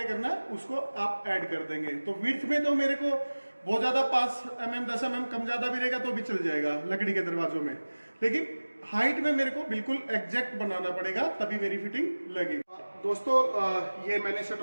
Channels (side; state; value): both; inverted; correlation -1.00